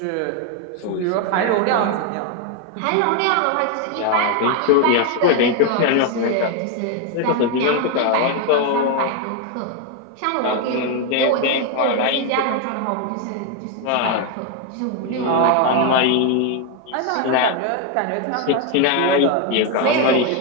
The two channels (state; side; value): different; both; correlation 0.01